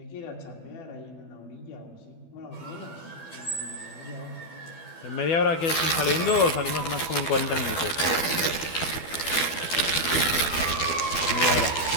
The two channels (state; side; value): late; right; 12 ms